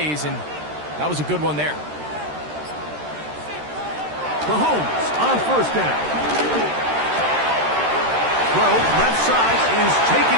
and that was a good one there. Mahomes on 1st down. throw, left side, is taken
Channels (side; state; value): left; late; 13 ms